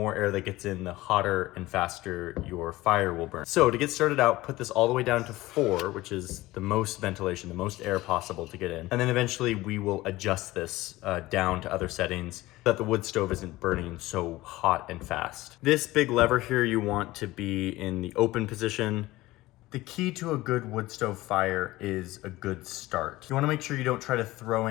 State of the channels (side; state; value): right; quieter; 18.3 dB